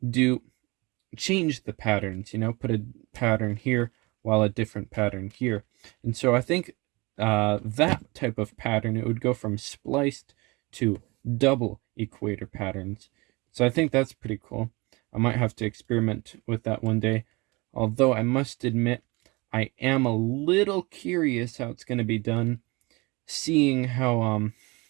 change the patterns, put a pattern here while a different pattern here. And so I think that type of pattern, it would go from spliced to double equator patterns. So I think that's pretty cool. I might have to experiment with that one day. Although I must admit, I am a little curious how it's going to be done, seeing how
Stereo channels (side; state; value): left; quieter; 25.2 dB